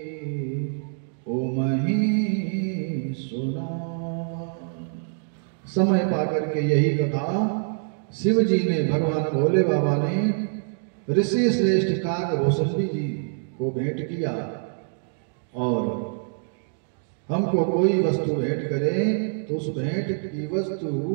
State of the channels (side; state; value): left; silent; digital silence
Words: उमहि सुना। समय पाकर के यही कथा शिव जी ने, भगवान भोले बाबा ने ऋषि श्रेष्ठ काकभूषणी जी को भेंट किया। और हमको कोई वस्तु भेंट करे तो उस भेंट की वस्तु